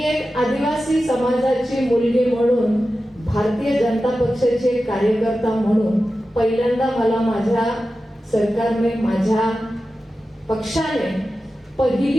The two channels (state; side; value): normal; both; correlation 0.93